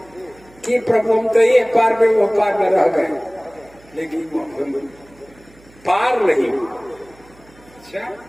कि प्रभु हम तो ये पार में वो पार में रह गए, लेकिन पार नहीं। अच्छा,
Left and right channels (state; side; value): noise; right; hum, 27 dB below the sound